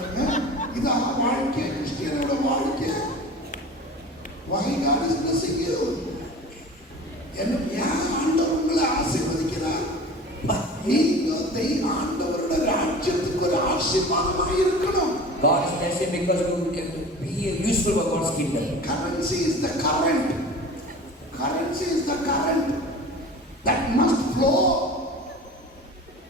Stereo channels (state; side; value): normal; both; correlation 0.38